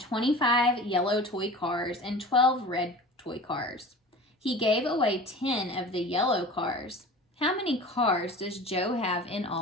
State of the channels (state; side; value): normal; both; correlation 0.38